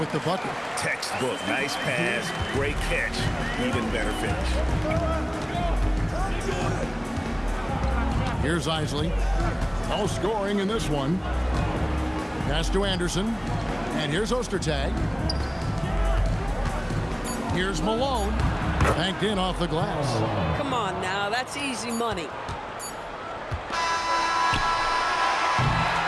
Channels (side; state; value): both; identical; correlation 1.00